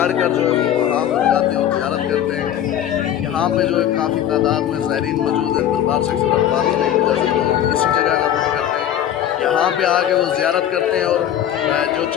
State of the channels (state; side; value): quieter; right; 10.7 dB